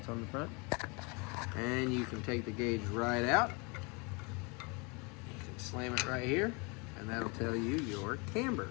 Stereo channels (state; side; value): quieter; right; 30.4 dB